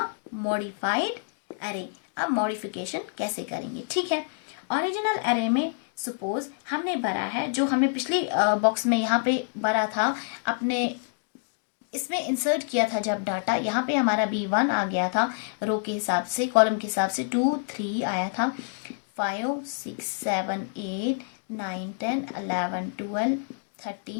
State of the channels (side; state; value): right; silent; digital silence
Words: मॉडिफाइड एरे। अब मॉडिफिकेशन कैसे करेंगे, ठीक है। ओरिजिनल एरे में सपोज हमने भरा है, जो हमें पिछली बॉक्स में यहाँ पे भरा था, अपने इसमें इंसर्ट किया था जब डाटा, यहाँ पे हमारा B1 आ गया था रो के हिसाब से, कॉलम के हिसाब से 2 3 आया था, 5 6 7 8 9 10 11 12